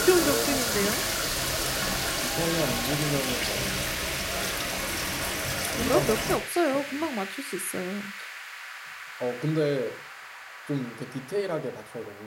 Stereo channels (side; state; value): both; identical; correlation 1.00